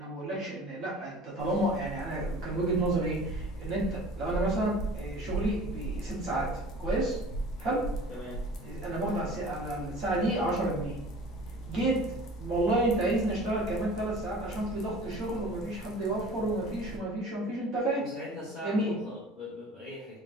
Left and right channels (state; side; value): normal; both; correlation 0.44